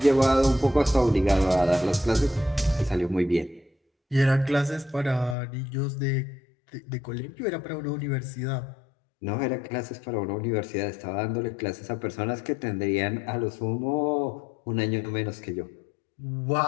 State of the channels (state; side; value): drops out; right; at 5.4 s